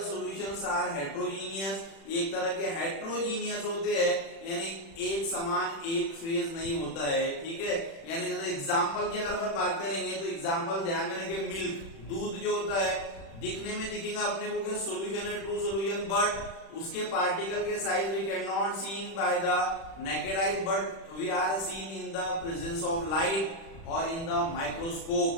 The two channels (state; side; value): late; right; 36 ms